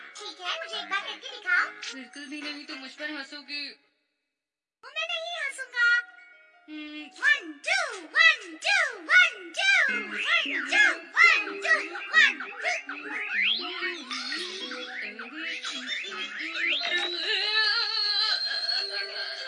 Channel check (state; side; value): identical; both; correlation 1.00